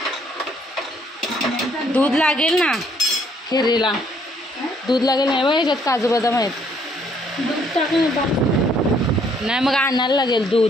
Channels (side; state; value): both; normal; correlation 0.66